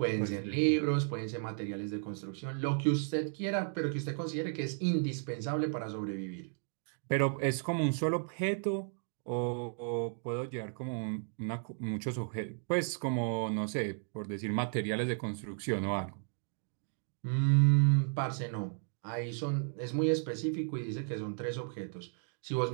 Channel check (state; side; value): silent; left; 55 dB below the other